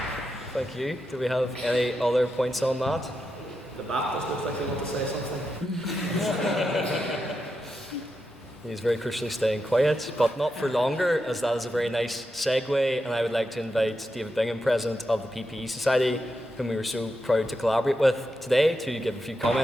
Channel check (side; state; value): both; normal; correlation 0.86